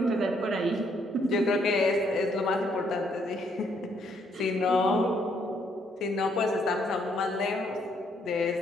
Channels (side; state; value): both; normal; correlation 0.71